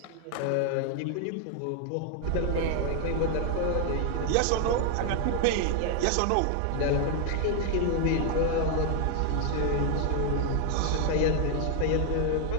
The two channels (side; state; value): both; different; correlation 0.00